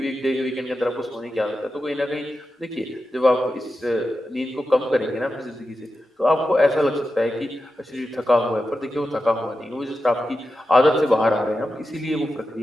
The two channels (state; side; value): normal; both; correlation 0.90